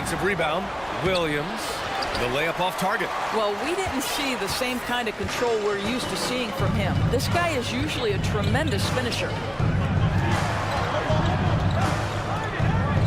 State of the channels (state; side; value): identical; both; correlation 1.00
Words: rebound. Williams. The layup off target. Well, we didn't see the same kind of control we're used to seeing from him. This guy is usually a tremendous finisher.